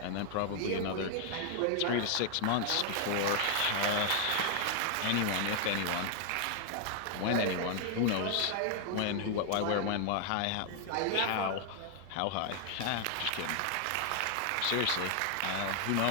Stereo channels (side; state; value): both; different; correlation 0.00